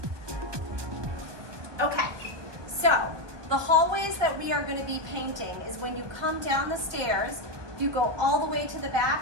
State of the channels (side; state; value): left; late; 1.2 ms